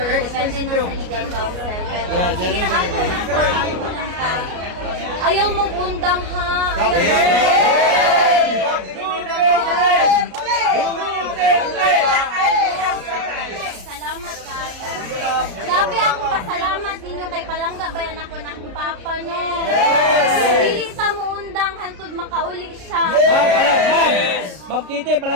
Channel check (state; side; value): late; left; 33 ms